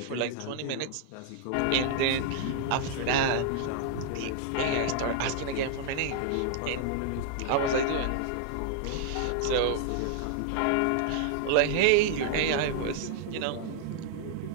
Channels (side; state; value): both; different; correlation 0.00